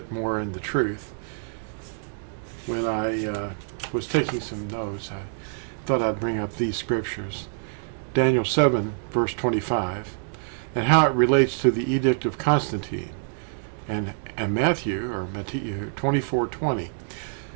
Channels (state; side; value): silent; left; digital silence